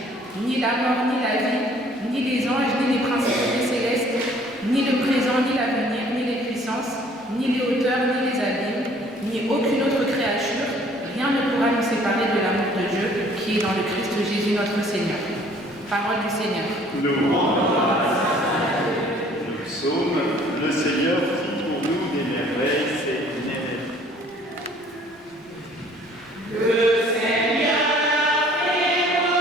Ni la mort, ni la vie, ni les anges, ni les principautés célestes, ni le présent, ni l'avenir, ni les puissances, ni les hauteurs, ni les abîmes, ni aucune autre créature, rien ne pourra nous séparer de l'amour de Dieu qui est dans le Christ Jésus notre Seigneur. Parole du Seigneur. Nous psaume, le Seigneur fit pour nous des merveilles, c'est une merveille. Le Seigneur fit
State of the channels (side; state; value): both; normal; correlation 0.56